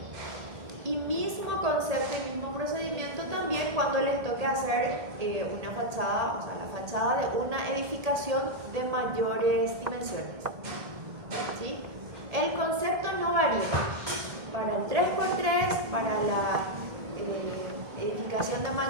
Y mismo concepto y mismo procedimiento también cuando les toque hacer una fachada, o sea, la fachada de una edificación de mayores dimensiones, ¿sí? El concepto no varía. Para el 3x3, para la edificación de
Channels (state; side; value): late; left; 1.8 ms